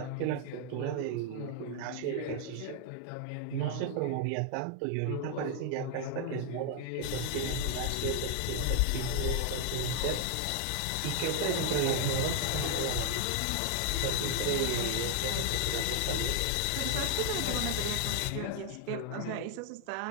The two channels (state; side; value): different; both; correlation 0.00